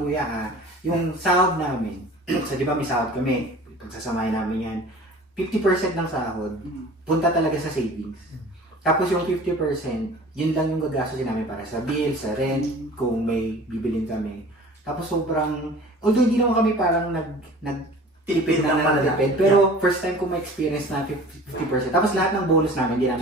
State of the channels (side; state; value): both; normal; correlation 0.44